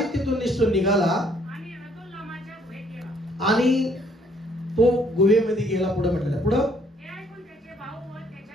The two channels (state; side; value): normal; both; correlation 0.64